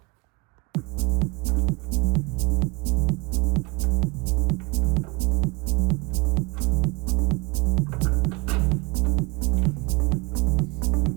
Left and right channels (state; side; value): quieter; left; 26.9 dB